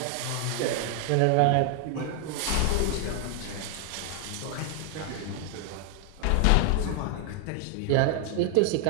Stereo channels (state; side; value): different; both; correlation 0.00